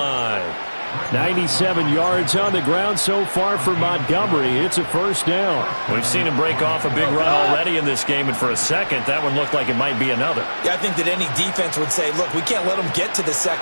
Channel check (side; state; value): both; inverted; correlation -1.00